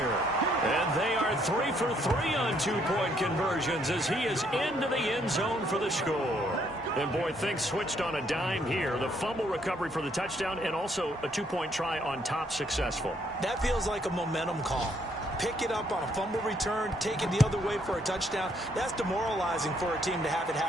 And they are 3 for 3 on two-point conversions as he is into the end zone for the score. And, boy, things switched on a dime here. The fumble recovery for the touchdown and also a two-point try on top successful. That feels like a momentum call. Pick it up on a fumble return, take it the other way for a touchdown. That's demoralizing for a team to have it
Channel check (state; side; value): normal; both; correlation 0.69